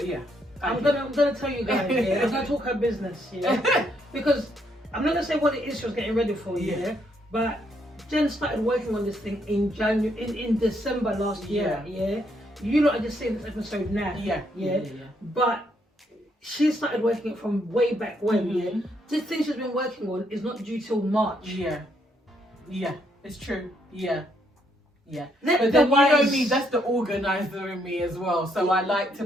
yeah. I'm gonna tell you guys. I'm gonna talk her business. Because I'm not gonna say what it is she was getting ready for. But Jen started working on this thing in in December last year. You lot are just seeing this episode now. But she started working it from way back when. This thing she's been working on is not due till March. It's true. But then you know me, that's the organizer in me as well. So I like to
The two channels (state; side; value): normal; both; correlation 0.73